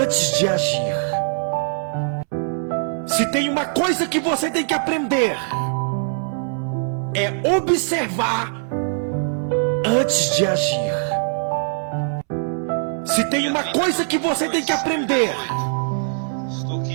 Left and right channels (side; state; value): left; silent; 64 dB below the other